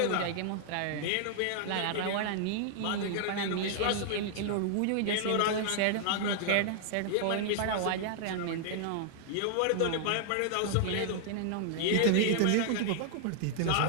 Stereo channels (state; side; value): different; both; correlation -0.01